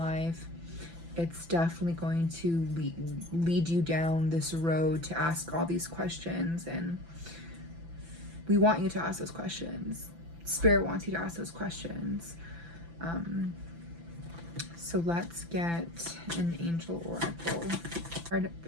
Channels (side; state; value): left; late; 5.9 ms